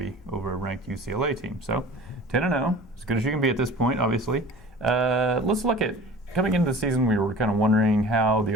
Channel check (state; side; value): normal; both; correlation 0.42